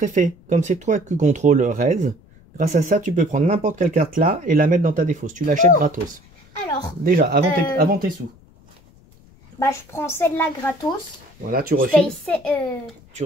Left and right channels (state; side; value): noise; left; rumble, 27 dB below the sound